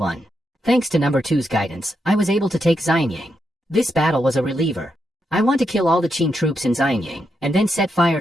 Thanks to number 2's guidance, I was able to take Xianyang. This battle was a reliever. I want to kill all the Qin troops in Xianyang, and then set fire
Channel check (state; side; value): normal; both; correlation 0.83